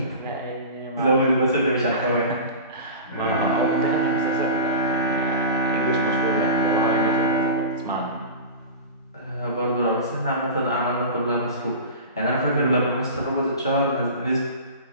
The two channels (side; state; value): both; inverted; correlation -0.32